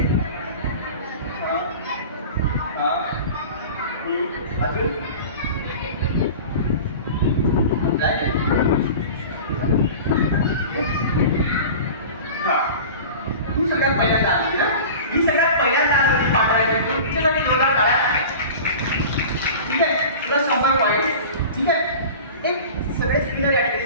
अजून तू सगळ्यात पहिल्यांदा आली ना. ही सगळ्यात पहिल्यांदा आली पाठवायला तिच्यासाठी जोरदार टाळ्या. ठीक आहे, प्लस 100 पॉईंट. ठीक आहे, एक सगळे स्पिनर या ठिकाणी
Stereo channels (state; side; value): inverted; both; correlation -0.36